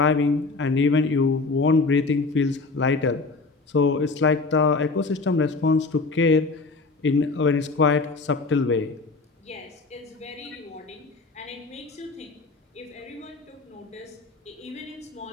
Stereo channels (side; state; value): right; quieter; 3.8 dB